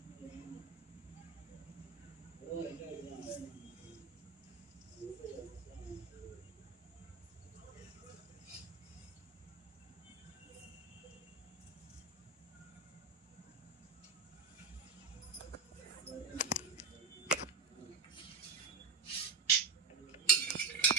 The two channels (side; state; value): left; quieter; 4.8 dB